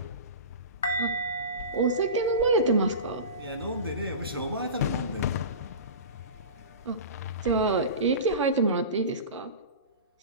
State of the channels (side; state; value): both; inverted; correlation -0.31